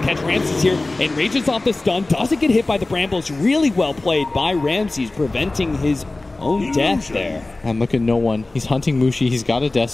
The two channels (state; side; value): quieter; right; 3.0 dB